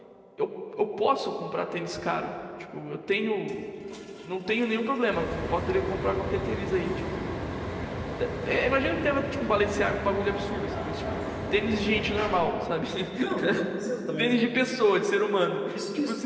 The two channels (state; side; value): identical; both; correlation 1.00